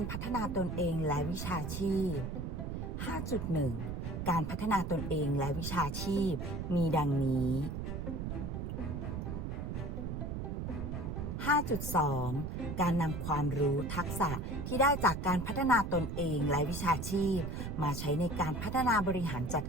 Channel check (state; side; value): noise; right; rumble, 4 dB below the sound